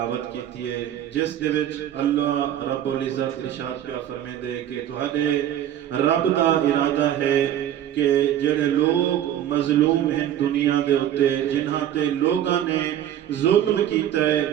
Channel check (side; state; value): left; quieter; 11.1 dB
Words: کیتی ہے جس دے وچ اللہ رب العزت ارشاد پیا فرمیندے کہ تہاڈے رب دا ارادہ ہے کہ جڑے لوگ مظلوم ہیں دنیا دے اوتے جنہاں تے لوگاں نے ظلم کیتا